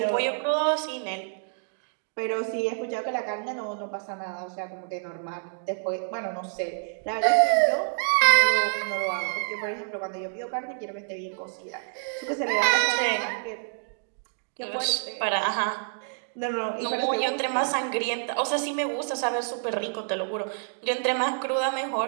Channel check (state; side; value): silent; left; digital silence